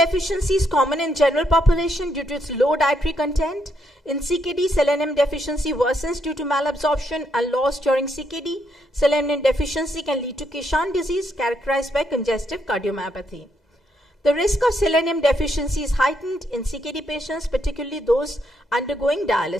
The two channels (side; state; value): both; normal; correlation 0.77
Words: is common in general population due to its low dietary content. In CKD, selenium deficiency worsens due to malabsorption and loss during CKD. Selenium deficiency can lead to Kishan disease characterized by congestive cardiomyopathy. The risk of selenium deficiency is heightened in CKD patients, particularly those undergoing